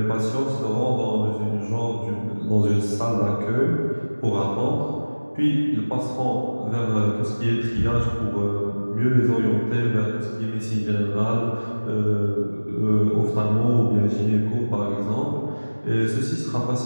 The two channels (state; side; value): inverted; both; correlation -1.00